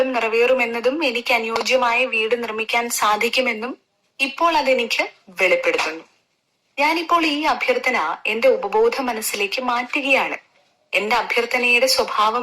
നിറവേറുമെന്നതും എനിക്ക് അനുയോജ്യമായ വീട് നിർമ്മിക്കാൻ സാധിക്കുമെന്നും ഇപ്പോൾ അതെനിക്ക് വെളിപ്പെടുത്തുന്നു. ഞാനിപ്പോൾ ഈ അഭ്യർത്ഥന എന്റെ ഉപബോധ മനസ്സിലേക്ക് മാറ്റുകയാണ്. എന്റെ അഭ്യർത്ഥനയുടെ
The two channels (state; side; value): identical; both; correlation 1.00